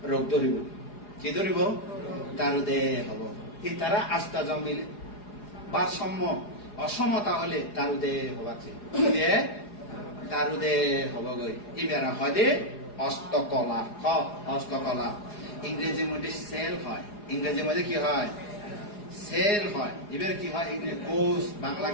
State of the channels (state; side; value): late; right; 4.8 ms